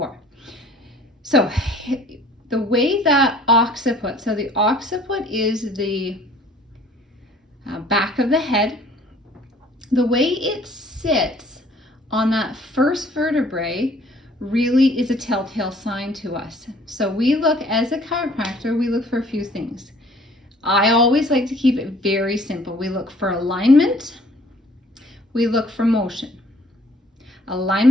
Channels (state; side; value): normal; both; correlation 0.56